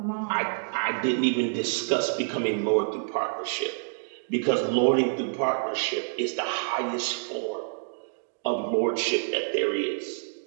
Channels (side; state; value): left; silent; digital silence